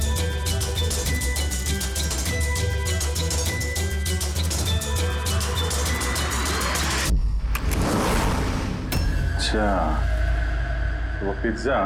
अच्छा, वो पिज्जा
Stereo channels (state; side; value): identical; both; correlation 1.00